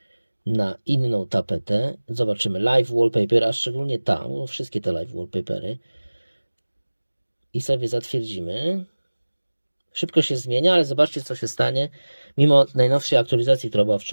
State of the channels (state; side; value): inverted; both; correlation -1.00